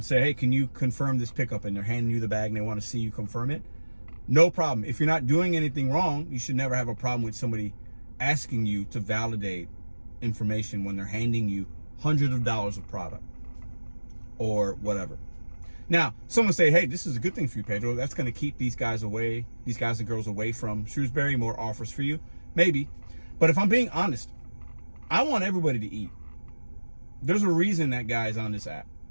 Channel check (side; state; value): both; inverted; correlation -1.00